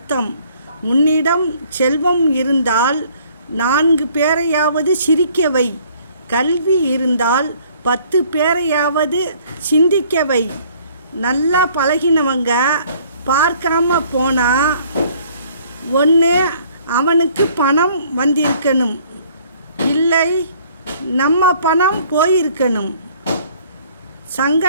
உன்னிடம் செல்வம் இருந்தால் 4 பேரையாவது சிரிக்க வை, கல்வி இருந்தால் 10 பேரையாவது சிந்திக்க வை. நல்லா பழகினவங்க பார்க்காம போனா ஒன்று அவனுக்கு பணம் வந்திருக்கணும், இல்லை நம்ம பணம் போயிருக்கணும்.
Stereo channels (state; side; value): inverted; both; correlation -0.59